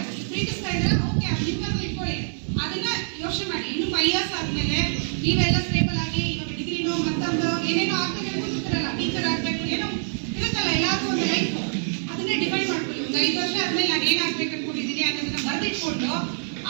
ಪ್ರೀತಿಸ್ತಾ ಇದ್ರೆ ಓಕೆ ನಿಮ್ಮನ್ನು ಇಟ್ಕೊಳ್ಳಿ, ಅದನ್ನ ಯೋಚನೆ ಮಾಡಿ. ಇನ್ನು 5 ಇಯರ್ಸ್ ಆದ್ಮೇಲೆ ನೀವೆಲ್ಲ ಸ್ಟೇಬಲ್ ಆಗಿ ಇವಾಗ ಡಿಗ್ರಿನೋ ಮತ್ತೊಂದು ಏನೇನೋ ಆಗ್ತದೆ ಕೂತಿರಲ್ಲ, ಟೀಚರ್ ಆಗ್ಬೇಕು ಏನೋ ಇರುತ್ತಲ್ಲ, ಎಲ್ಲಾದ್ರೂ ಒಂದು ಲೈಫ್ ಅದನ್ನೇ ಡಿಫೈನ್ ಮಾಡ್ಕೊಳ್ಳಿ. ಒಂದು 5 ವರ್ಷ ಆದ್ಮೇಲೆ ನಾನು ಏನಾಗ್ಬೇಕು ಅನ್ಕೊಂಡಿದ್ದೀನಿ ಅನ್ನೋದನ್ನ ಬರೆದಿಟ್ಕೊಂಡು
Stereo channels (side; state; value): left; silent; digital silence